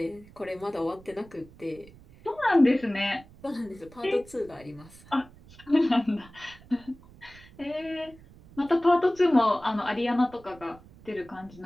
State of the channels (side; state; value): right; noise; rumble, 23 dB below the sound